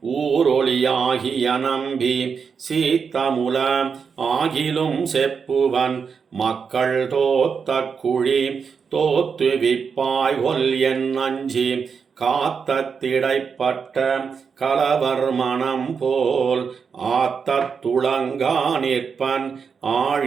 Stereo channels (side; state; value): left; quieter; 6.0 dB